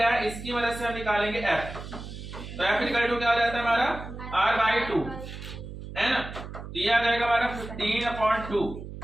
है इसकी मदद से हम निकालेंगे f। तो f इक्वल टू क्या हो जाता है हमारा, r/2, है ना। तो ये आ जाएगा हमारा 15/2,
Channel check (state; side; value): noise; right; hum, 11 dB below the sound